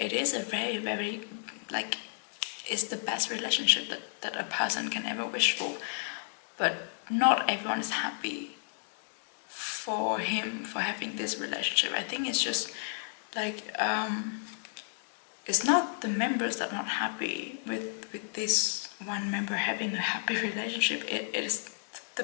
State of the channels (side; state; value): right; silent; digital silence